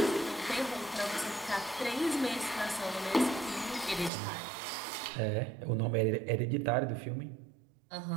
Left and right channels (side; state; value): left; drops out; at 4.1 s